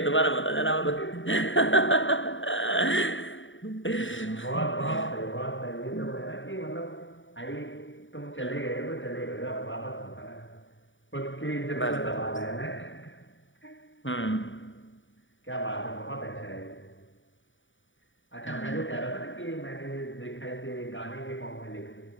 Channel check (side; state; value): right; late; 0.56 ms